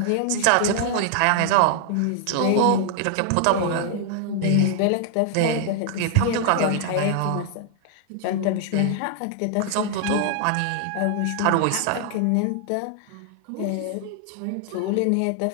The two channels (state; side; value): different; both; correlation 0.00